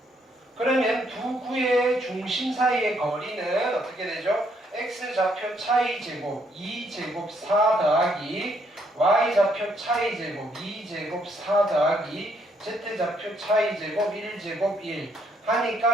그러면 두 구의 중심 사이의 거리는 어떻게 되죠? x 좌표 차이 제곱 2제곱 4 더하기 y 좌표 차이 제곱 2제곱 4 더하기 z 좌표 차이 제곱 1제곱 1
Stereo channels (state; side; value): normal; both; correlation 0.71